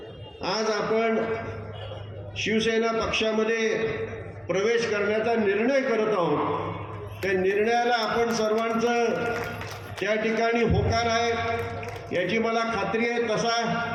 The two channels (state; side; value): identical; both; correlation 1.00